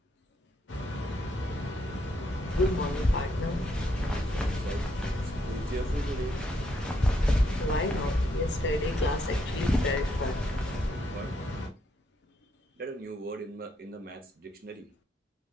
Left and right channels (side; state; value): both; normal; correlation 0.75